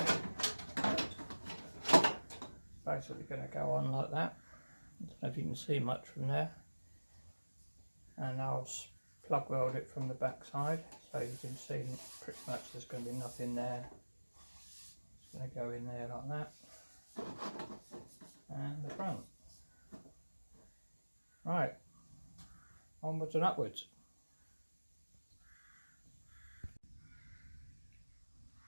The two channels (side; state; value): both; inverted; correlation -1.00